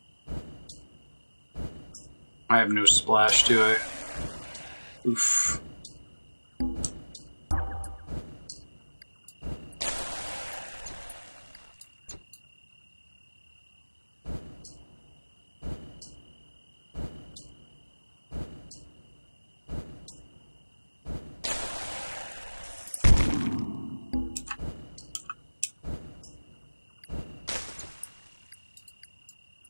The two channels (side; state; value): both; inverted; correlation -1.00